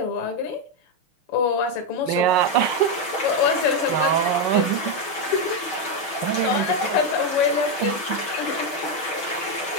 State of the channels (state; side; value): late; right; 6.4 ms